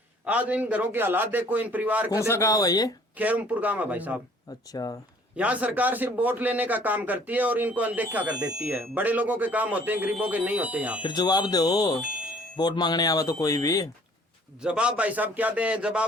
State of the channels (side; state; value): both; normal; correlation 0.56